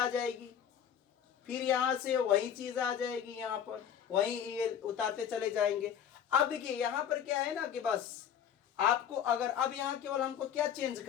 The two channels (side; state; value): right; quieter; 8.9 dB